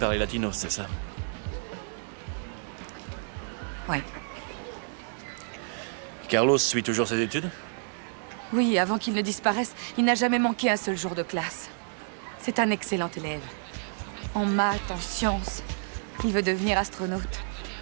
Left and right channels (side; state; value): left; silent; 58 dB below the other